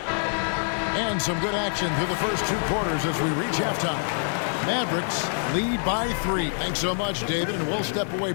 And some good action through the first 2 quarters as we reach halftime. Mavericks lead by 3. Thanks so much, David, and we'll step away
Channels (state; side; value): silent; right; 61 dB below the other